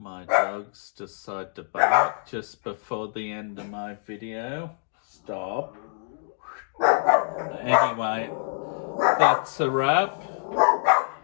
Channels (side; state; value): right; silent; 61 dB below the other